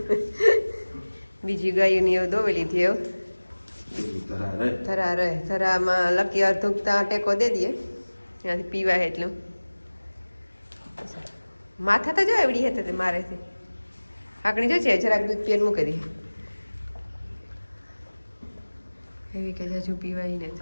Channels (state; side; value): inverted; both; correlation -1.00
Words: બીજી ગાયોની એવું દોવી લીધી એવું ધરા રહે. ધરામાં લકી અર્ધુકતા ટેકો દે દઈએ ત્યાંથી પીવાય એટલું. માથા તો જો એવડી હતી તે મારે છે આકડી જો છે જરાક દૂધ પીને મૂકી દઈએ એવી કે હજુ પીવાય ને